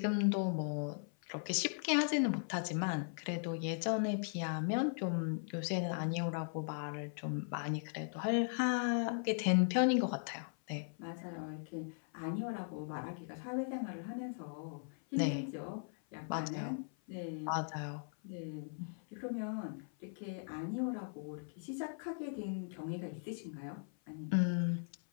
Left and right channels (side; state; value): right; silent; 52 dB below the other